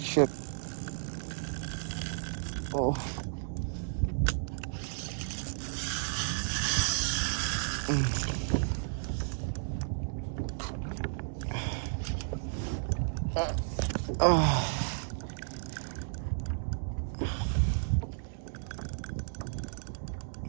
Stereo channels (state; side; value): silent; left; digital silence